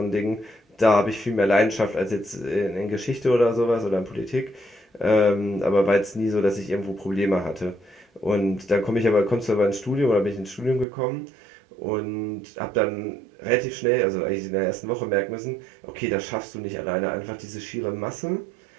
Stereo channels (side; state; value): left; drops out; at 10.9 s